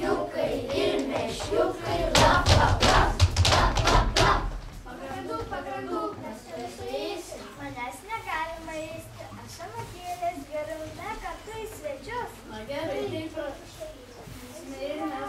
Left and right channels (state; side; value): identical; both; correlation 1.00